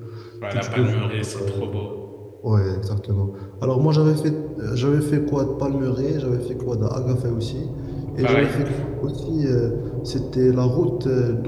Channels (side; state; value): both; identical; correlation 1.00